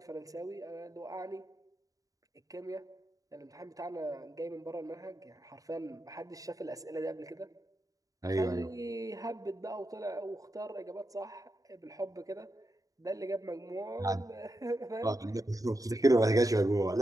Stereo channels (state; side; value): late; left; 0.17 ms